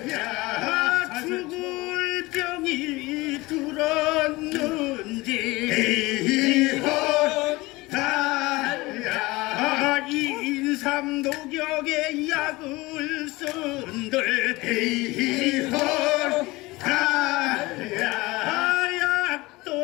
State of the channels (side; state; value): right; quieter; 21.4 dB